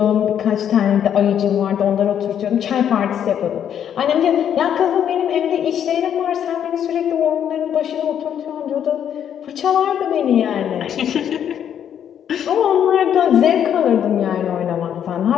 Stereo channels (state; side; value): quieter; right; 9.2 dB